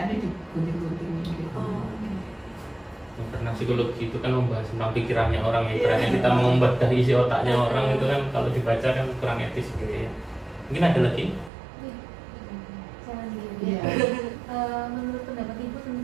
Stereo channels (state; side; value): drops out; left; at 11.5 s